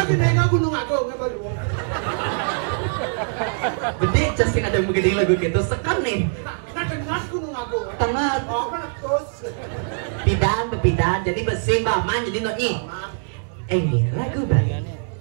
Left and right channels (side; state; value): left; silent; digital silence